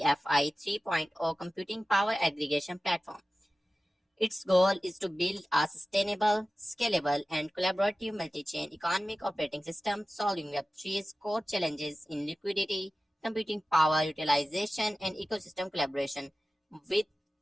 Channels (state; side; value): normal; both; correlation 0.96